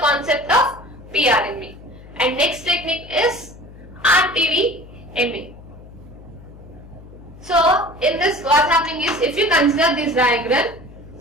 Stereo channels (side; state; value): left; noise; hum, 19 dB below the sound